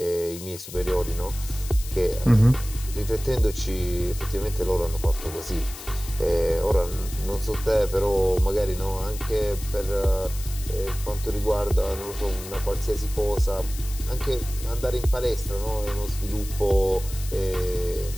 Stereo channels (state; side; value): noise; left; hiss, 13 dB below the sound